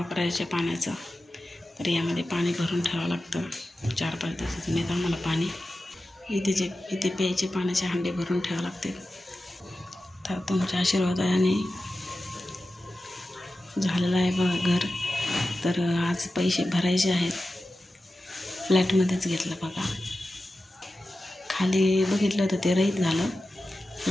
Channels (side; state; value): both; normal; correlation 0.93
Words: पाण्याचं. तर यामध्ये पाणी भरून ठेवावं लागतं, 4-5 दिवसातून येतं आम्हाला पाणी. इथे प्यायचे पाण्याचे हांडे भरून ठेवावे लागते. तर तुमच्या आशीर्वादाने झालेलं आहे बघा घर. तर आज पैसे भरायचे आहेत, फ्लॅटमध्येच घेतलं बघा. खाली बघितलं तर ते रहित झालं,